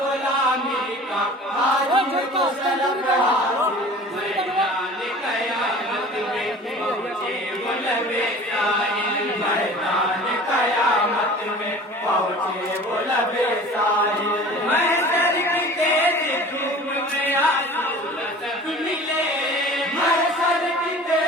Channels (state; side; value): normal; both; correlation 0.43